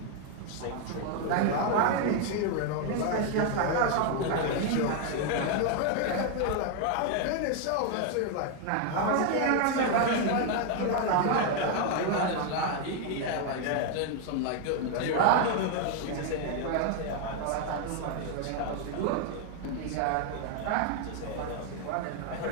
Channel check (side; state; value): both; different; correlation 0.01